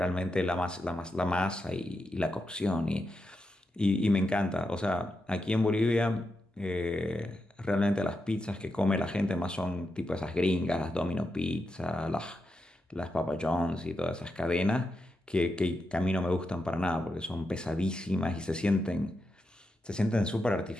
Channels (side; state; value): both; normal; correlation 0.86